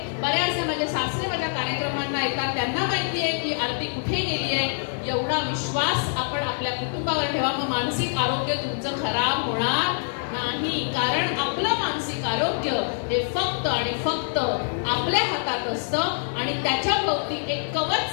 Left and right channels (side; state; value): right; silent; 61 dB below the other